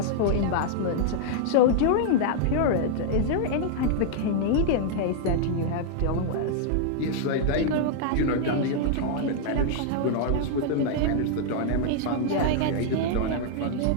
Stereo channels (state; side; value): different; both; correlation -0.01